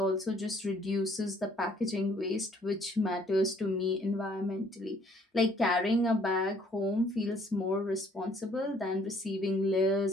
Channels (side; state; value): both; normal; correlation 0.62